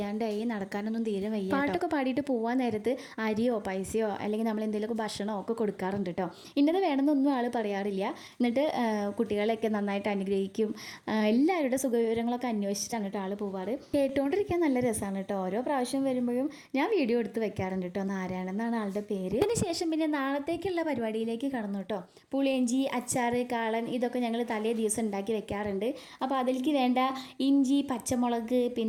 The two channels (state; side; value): identical; both; correlation 1.00